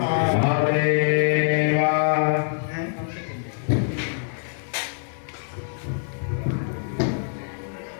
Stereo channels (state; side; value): silent; right; digital silence